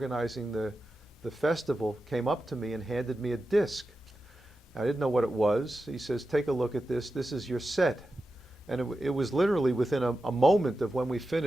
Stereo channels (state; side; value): normal; both; correlation 0.91